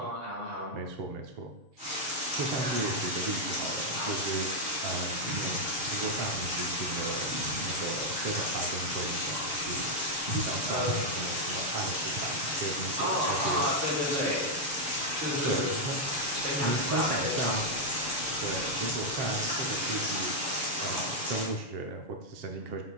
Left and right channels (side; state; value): left; late; 7.1 ms